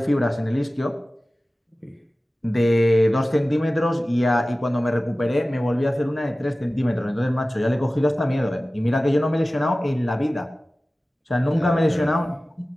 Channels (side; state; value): both; normal; correlation 0.96